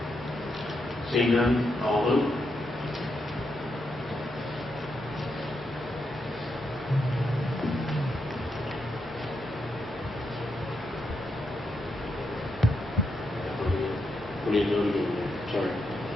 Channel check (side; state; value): both; normal; correlation 0.83